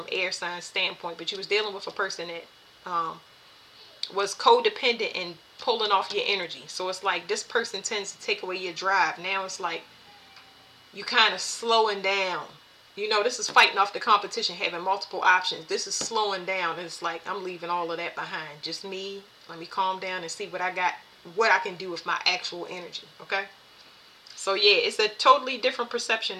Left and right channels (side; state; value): both; identical; correlation 1.00